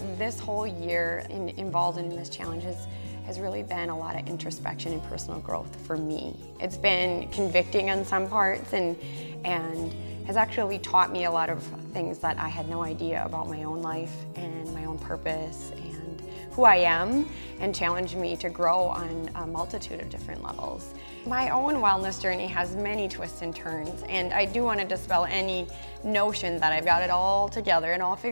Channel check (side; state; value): both; inverted; correlation -1.00